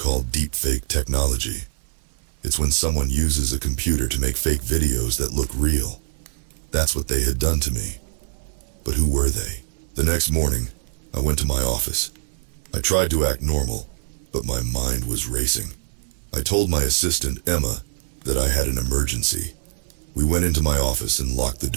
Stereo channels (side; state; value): left; silent; 58 dB below the other